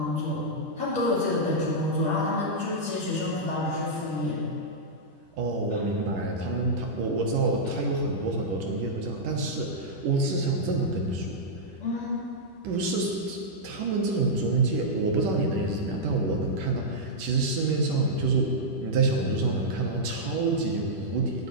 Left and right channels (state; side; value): late; left; 10 ms